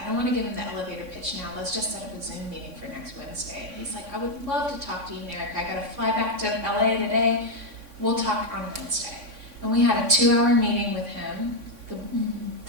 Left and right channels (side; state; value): left; late; 3.6 ms